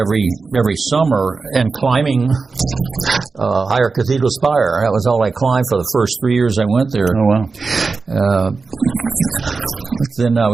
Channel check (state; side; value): quieter; left; 4.3 dB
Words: summer and climbing Higher Cathedral Spire. That was all I climbed for the first 3 years I went there. Oh, wow. Then I